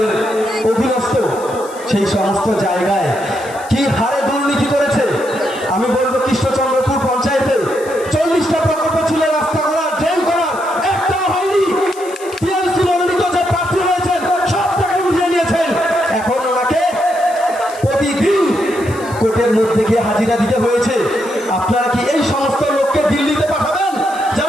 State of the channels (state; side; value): noise; left; hiss, 19 dB below the sound